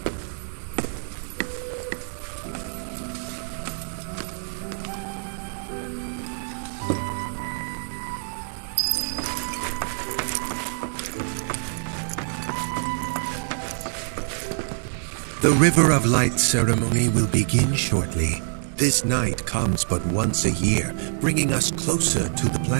The River of Light ceremony will begin shortly. This night comes but once a year, bringing us closer to the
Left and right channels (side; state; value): left; silent; digital silence